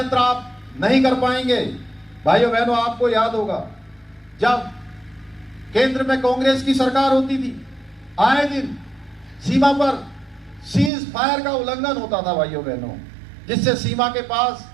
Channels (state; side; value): drops out; left; at 10.9 s